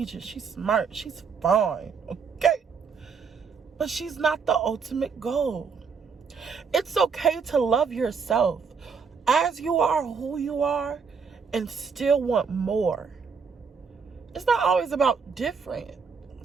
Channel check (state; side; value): quieter; left; 5.7 dB